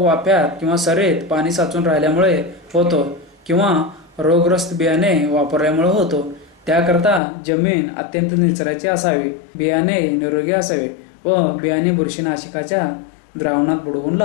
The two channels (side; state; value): right; drops out; at 7.2 s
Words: किंवा सरीत पाणी साचून राहिल्यामुळे होतो किंवा रोगग्रस्त बियाणे वापरल्यामुळे होतो. त्याकरता जमीन अत्यंत निचरायची असावी. बियाणे निरोगी असावे व बियाणे बुरशीनाशकाच्या द्रावणात बुडवून